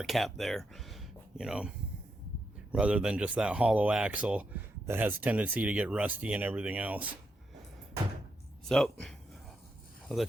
cap there, you know, rather than just that hollow axle that has a tendency to get rusty and everything else. So I'll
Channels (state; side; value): normal; both; correlation 0.82